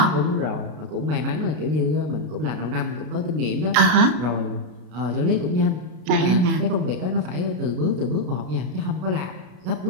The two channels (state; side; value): late; left; 33 ms